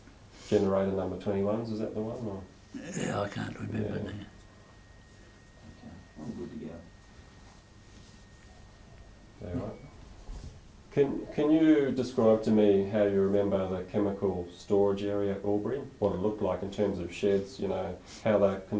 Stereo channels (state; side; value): identical; both; correlation 1.00